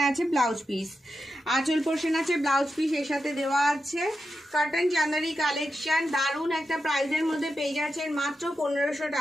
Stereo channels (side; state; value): both; normal; correlation 0.88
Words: আছে ব্লাউজ পিস। আঁচল পোর্শন আছে, ব্লাউজ পিস এর সাথে দেওয়া আছে। কটন চান্দেরি কালেকশন দারুণ একটা প্রাইসের মধ্যে পেয়ে যাচ্ছেন মাত্র 1500